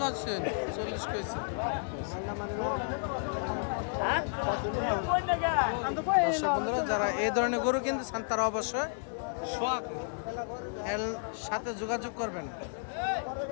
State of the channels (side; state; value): right; silent; 56 dB below the other